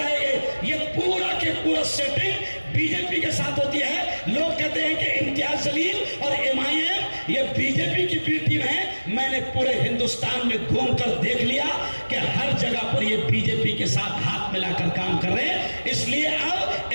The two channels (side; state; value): both; inverted; correlation -1.00